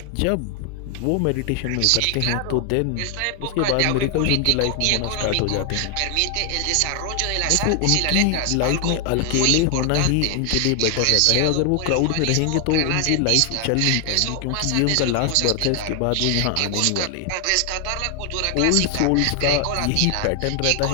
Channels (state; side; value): different; both; correlation 0.00